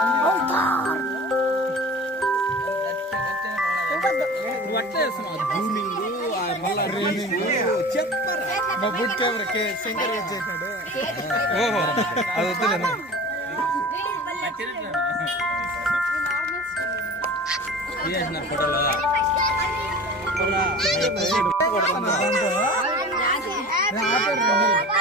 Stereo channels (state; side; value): normal; both; correlation 0.37